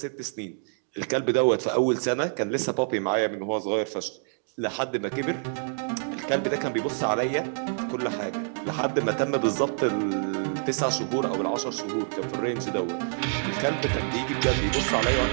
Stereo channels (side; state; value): left; silent; digital silence